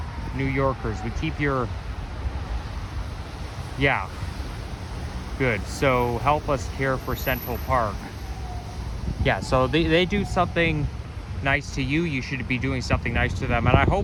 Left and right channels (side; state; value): both; identical; correlation 1.00